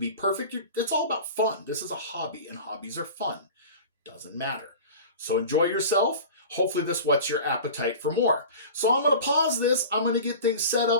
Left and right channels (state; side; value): inverted; both; correlation -0.37